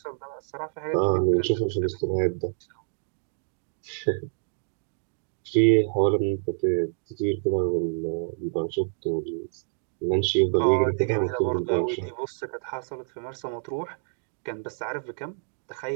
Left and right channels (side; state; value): left; silent; digital silence